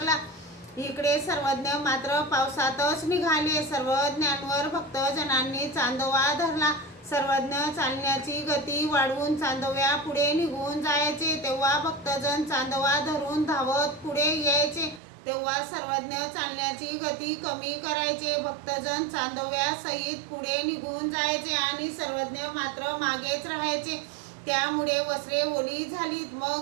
इकडे सर्वज्ञ मात्र पावसातच निघाले। सर्वज्ञांवर भक्तजनांनी चांदोवा धरला। सर्वज्ञ चालण्याची गती वाढवून चांदोव्या पुढे निघून जायचे। तेव्हा भक्तजन चांदोवा धरून धावत पुढे यायचे। तेव्हा सर्वज्ञ चालण्याची गती कमी करायचे। भक्तजन चांदोव्या सहित पुढे निघून जायचे आणि सर्वज्ञ मात्र मागेच राहायचे। त्यामुळे वस्त्रे ओली झालीत।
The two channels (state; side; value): drops out; left; at 15.0 s